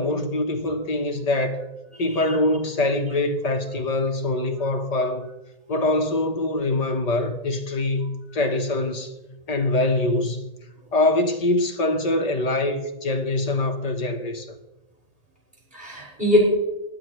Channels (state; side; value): late; right; 1.8 ms